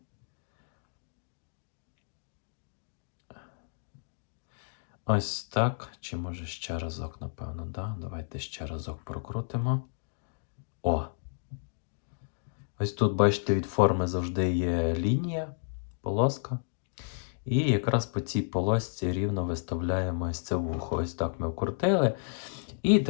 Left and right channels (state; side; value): silent; right; digital silence